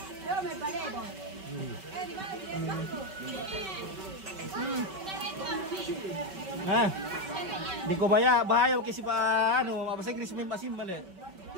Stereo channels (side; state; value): left; late; 5.2 ms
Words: Ah. Di ko bahaya kasi pa ano, bahasa Inggris may masim mali.